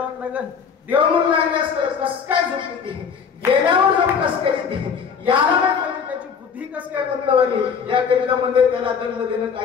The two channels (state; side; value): quieter; right; 6.5 dB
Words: लागल देव म्हणून लागले असतं कस काय झोप येते गेल्यावर झोप कस काय येते याला म्हणजे त्याची बुद्धी कस काय बदलवाली या करिता म्हणजे त्याला दंड देणं